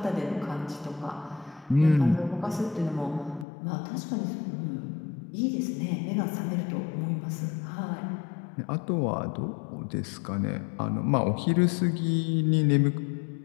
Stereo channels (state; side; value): drops out; right; at 3.5 s